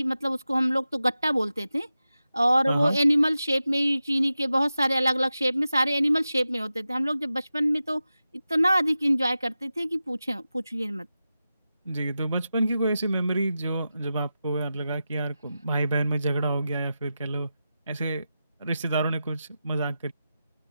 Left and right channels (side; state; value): both; inverted; correlation -0.92